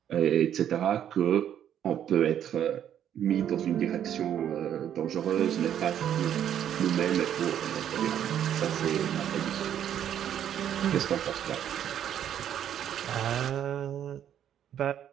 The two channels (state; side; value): quieter; left; 10.0 dB